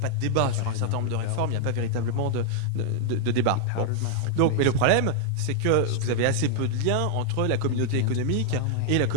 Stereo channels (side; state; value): both; different; correlation 0.00